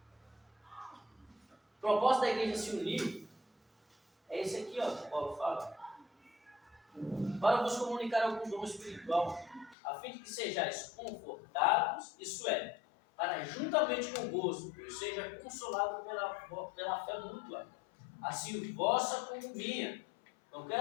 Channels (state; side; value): drops out; right; at 9.8 s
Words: O propósito da igreja se unir é esse aqui, ó, que Paulo fala. Para vos comunicar algum dom espiritual, a fim de que sejais confortados, isso é, para juntamente convosco eu seja consolado pela fé mútua, assim vossa como minha. Não